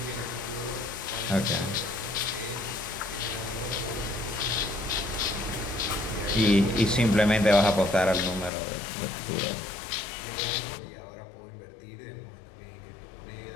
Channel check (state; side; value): drops out; right; at 8.5 s